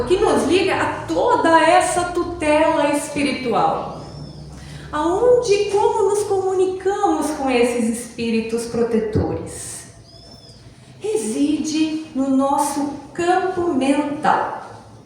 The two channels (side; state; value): both; identical; correlation 1.00